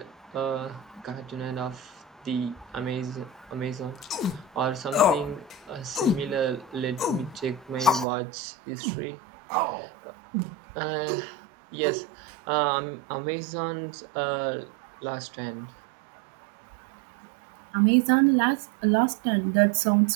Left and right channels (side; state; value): left; drops out; at 8.1 s